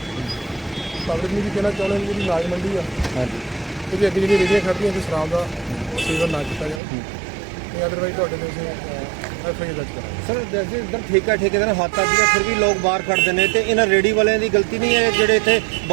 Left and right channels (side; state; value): left; drops out; at 6.8 s